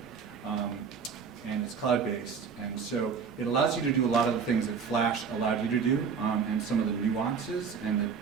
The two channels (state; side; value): quieter; left; 6.1 dB